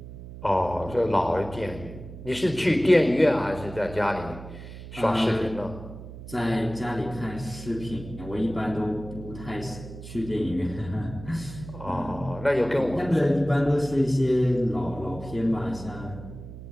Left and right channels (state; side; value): noise; right; hum, 13 dB below the sound